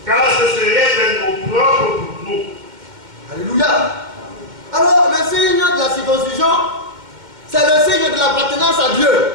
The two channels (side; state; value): left; late; 2.1 ms